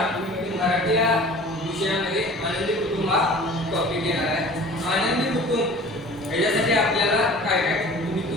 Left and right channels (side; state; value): both; normal; correlation 0.44